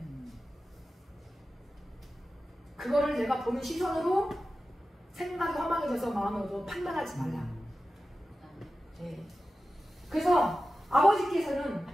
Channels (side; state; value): both; normal; correlation 0.94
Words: 그거를 내가 보는 시선으로 생각이 허망해져서 마음으로 판단하지 말라. 네. 그래서 아버지께서는